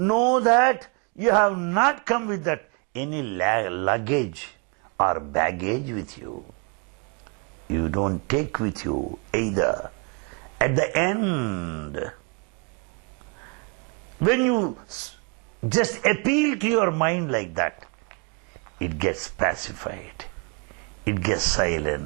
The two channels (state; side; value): quieter; left; 35.6 dB